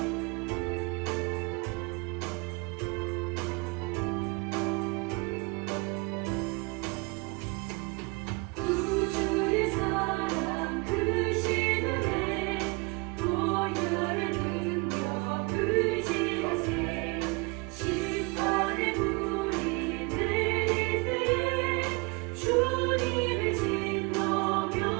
구주의 사랑 크신 은혜 보혈의 능력 의지하세. 심판의 불이 내릴 때에 주님을 질러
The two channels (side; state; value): left; quieter; 27.8 dB